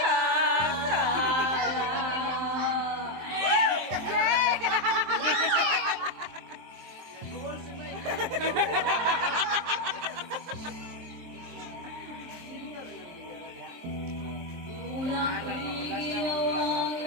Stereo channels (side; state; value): left; late; 23 ms